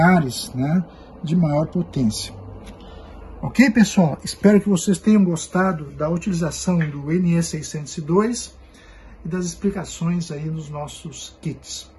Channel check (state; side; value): identical; both; correlation 1.00